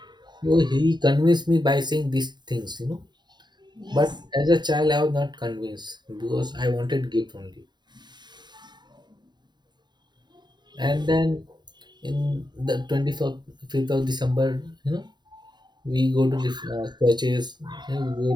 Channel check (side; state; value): left; late; 0.21 ms